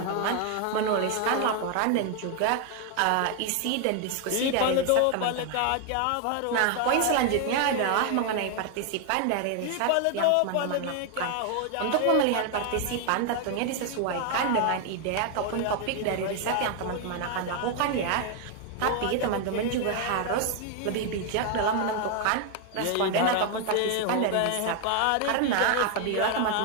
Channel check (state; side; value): different; both; correlation 0.00